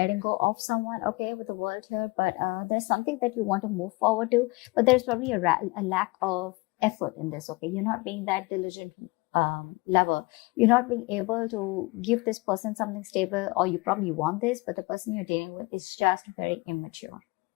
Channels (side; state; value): right; quieter; 24.7 dB